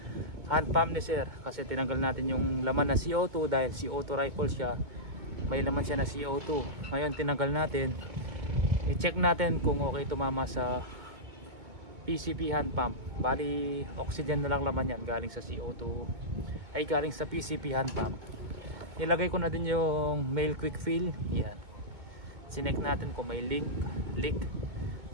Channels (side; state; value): left; late; 2.2 ms